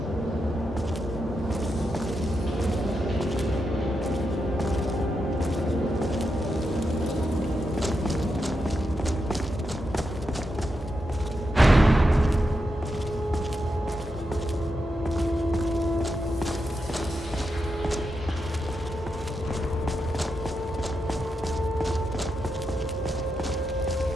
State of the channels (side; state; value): both; normal; correlation 0.86